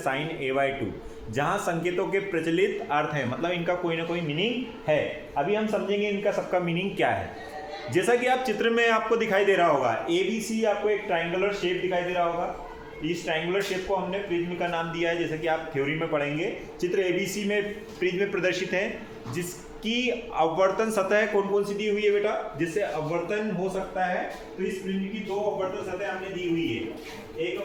ए बाई 2, जहाँ संकेतों के प्रचलित अर्थ है, मतलब इनका कोई ना कोई मीनिंग है। अभी हम समझेंगे इनका सबका मीनिंग क्या है। जैसा कि आप चित्र में आपको दिखाई दे रहा होगा, ABC आपको एक ट्राइंगुलर शेप दिखाई दे रहा होगा। इस ट्राइंगुलर शेप को हमने प्रिज्म का नाम दिया है, जैसा कि आप थ्योरी में पढ़ेंगे। चित्र ABC में प्रिज्म प्रदर्शित है, जिसकी अपवर्तन सतह कौन कौन सी दी हुई है बेटा, जिससे अपवर्तन हो सकता है। तो इस प्रिज्म की दो अपवर्तन सतह हमने दी हुई है। एक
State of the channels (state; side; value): noise; left; hum, 29 dB below the sound